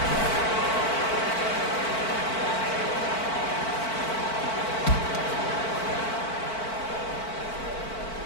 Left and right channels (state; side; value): late; right; 4.5 ms